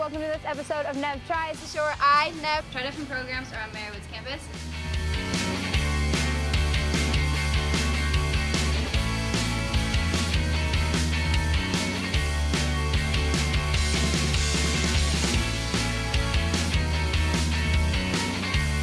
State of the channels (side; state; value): both; identical; correlation 1.00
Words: to this episode of Nev Tries, the show where I, Nev, try different programs around Marywood's campus.